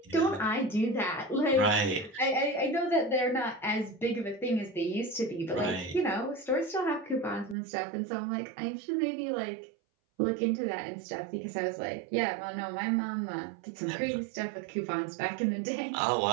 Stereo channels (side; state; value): left; drops out; at 7.6 s